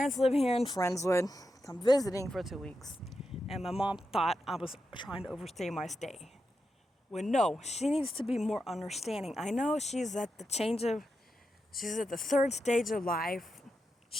live here in Friendswood. I'm visiting for 2 weeks, and my mom thought I was trying to overstay my stay. Well, no, she needs to be more understanding. I know she's at the third stage of life.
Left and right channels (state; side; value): normal; both; correlation 0.87